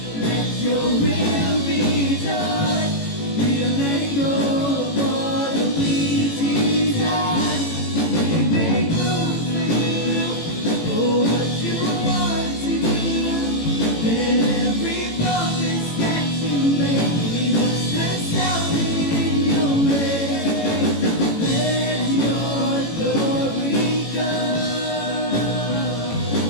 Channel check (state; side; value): late; right; 18 ms